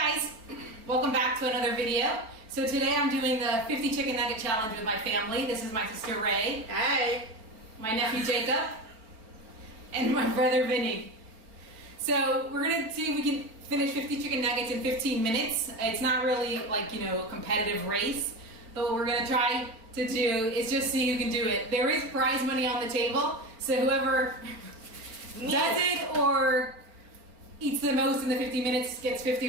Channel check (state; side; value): late; left; 4.6 ms